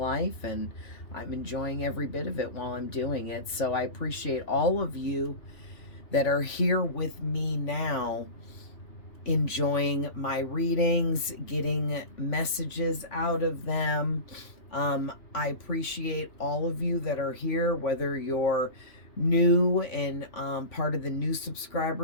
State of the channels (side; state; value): right; late; 3.5 ms